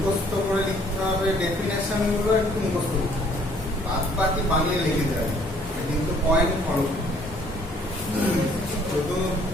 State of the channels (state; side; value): normal; both; correlation 0.60